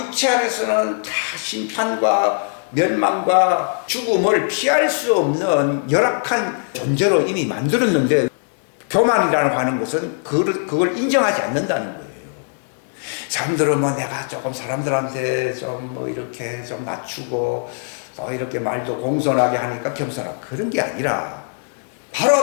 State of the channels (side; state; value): right; silent; digital silence